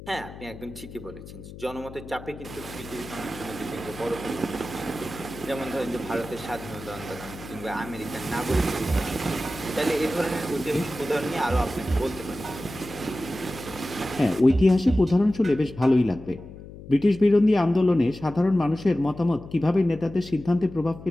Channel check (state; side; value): noise; left; hum, 15 dB below the sound